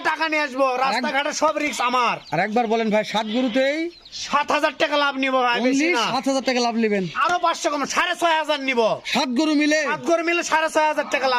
টাকা নিয়ে আসবো, রাস্তাঘাটে সব রিস্ক আমার। আর একবার বলেন ভাই, 7 গরুতেই 7000 টাকা লাভ নিবো ভাই, বেশি না। 7000 টাকা লাভ নেবেন, আরো 500 কম, 6500 নিবো। 7 গরু মিলে 7 গরু মিলে 6500 টাকা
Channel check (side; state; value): both; identical; correlation 1.00